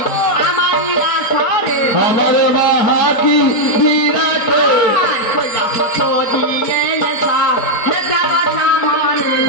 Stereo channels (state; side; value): late; right; 4.6 ms